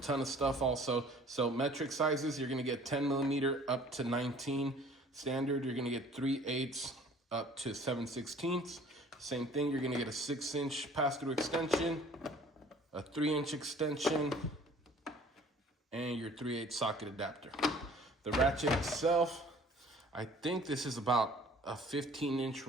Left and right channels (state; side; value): normal; both; correlation 0.52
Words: ton of stuff also. So metric sizes, you're gonna get 10 millimeter up to 19. Standard, you're gonna get 3/8 up to 7/16. Same thing, you're gonna get a 6-inch pass-through extension, a 3-inch extension, and your 3/8 socket adapter. The ratchet itself, I think this is about a 15-inch